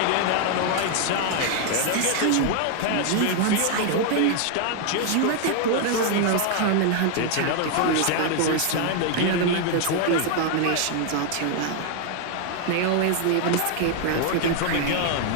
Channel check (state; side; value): different; both; correlation 0.00